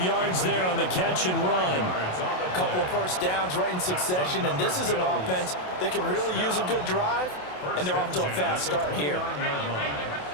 yards there on the catch and run. A couple of first downs right in succession, and this is an offense that can really use a good drive, and they're off to a fast start here.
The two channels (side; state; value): right; late; 27 ms